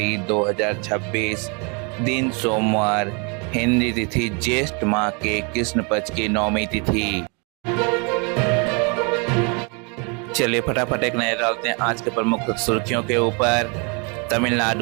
2026, दिन सोमवार, हिंदी तिथि ज्येष्ठ माह के कृष्ण पक्ष की नौमी तिथि। चलिए फटाफट एक नजर डालते हैं आज के प्रमुख सुर्खियों के ऊपर।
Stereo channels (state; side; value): quieter; left; 33.9 dB